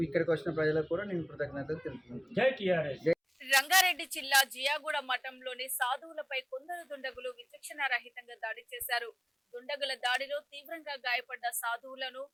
ఇక్కడికి వచ్చిన ప్రజలకు కూడా నేను కృతజ్ఞతలు తెలుపుతున్నాను. రంగారెడ్డి జిల్లా జియాగూడ మఠంలోని సాధువులపై కొందరు దుండగులు విచక్షణారహితంగా దాడి చేశారు. దుండగుల దాడిలో తీవ్రంగా గాయపడ్డ సాధువులను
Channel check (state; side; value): identical; both; correlation 1.00